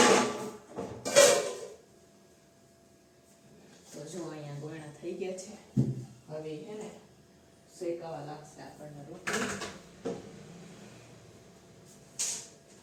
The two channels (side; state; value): both; identical; correlation 1.00